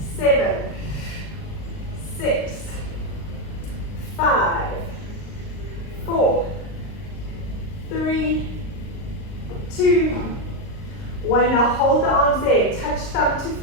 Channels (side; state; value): right; late; 39 ms